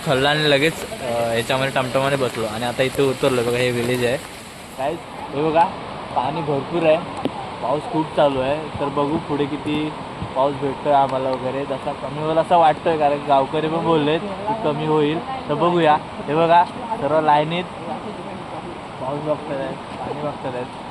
खल्ला आणि लगेच ह्याच्यामध्ये टमटमाने बसलो आणि आता इथे उतरलो. बघा, हे विलेज आहे काय. हे बघा, पाणी भरपूर आहे, पाऊस खूप चालू आहे. तर बघू पुढे किती पाऊस भेटतोय आम्हाला वगैरे. जसा कमी होईल असं वाटतंय, कारण गावकरी पण बोललेत की कमी होईल. तर बघूया. हे बघा, सर्व लाईनीत पाऊस बघतात आहेत, पाणी बघतात आहेत.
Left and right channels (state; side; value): identical; both; correlation 1.00